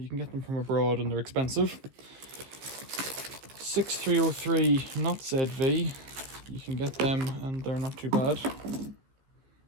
can get them from abroad and they're expensive. 6303 not ZV, you can get them and they're not too bad.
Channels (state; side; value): late; left; 14 ms